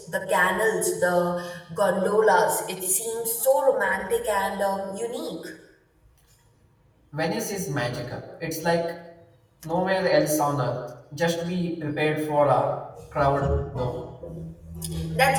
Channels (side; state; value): both; identical; correlation 1.00